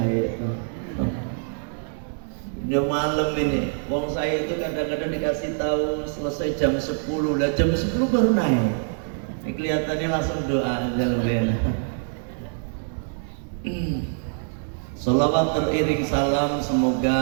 Udah malam ini, wong saya itu kadang-kadang dikasih tahu selesai jam 10, lah jam 10 baru naik. Ini kelihatannya langsung doa aja lebih enak. Salawat teriring salam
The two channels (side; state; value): left; silent; 61 dB below the other